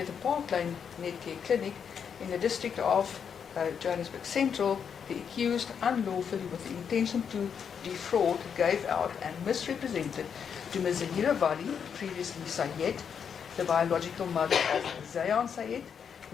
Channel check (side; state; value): right; quieter; 7.2 dB